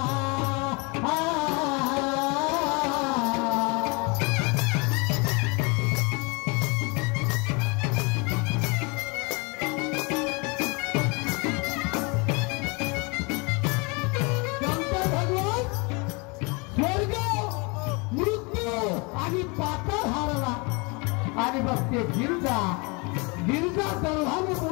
आणि पाताळ हारला. आणि बघ ते गिरजा गर्भाने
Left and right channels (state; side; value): quieter; right; 29.7 dB